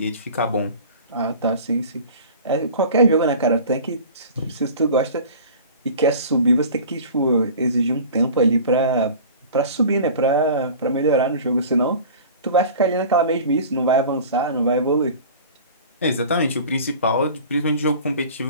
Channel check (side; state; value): both; inverted; correlation -0.41